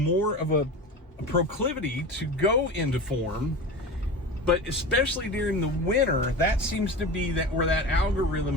of a proclivity to go into form, but especially during the winter, that seems to be where that algorithm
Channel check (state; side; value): normal; both; correlation 0.29